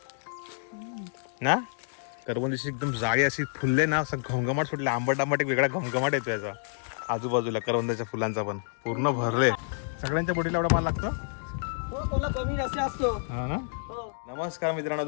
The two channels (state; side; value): silent; right; digital silence